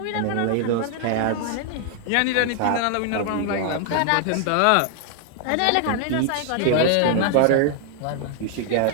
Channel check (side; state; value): both; different; correlation 0.00